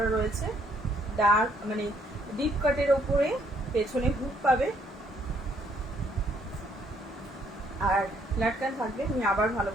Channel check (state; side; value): normal; both; correlation 0.67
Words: রয়েছে, ডার্ক মানে ডিপ কাটের ওপরে পেছনে হুক পাবে আর লাটকান থাকবে। আমি আবার ভালো